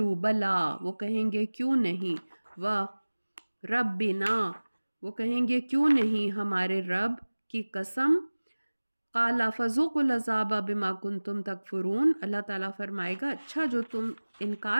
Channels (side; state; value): both; inverted; correlation -1.00